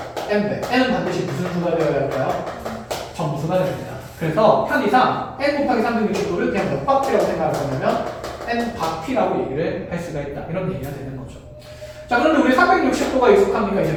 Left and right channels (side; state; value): both; identical; correlation 1.00